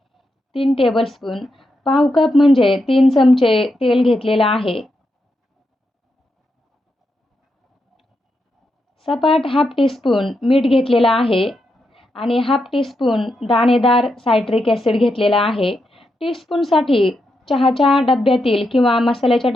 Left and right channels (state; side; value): normal; both; correlation 0.84